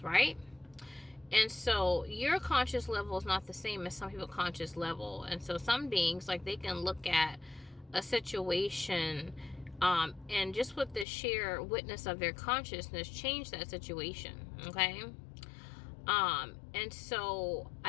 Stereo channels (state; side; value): drops out; right; at 11.1 s